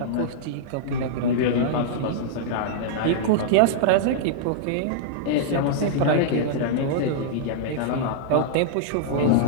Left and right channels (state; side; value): different; both; correlation -0.02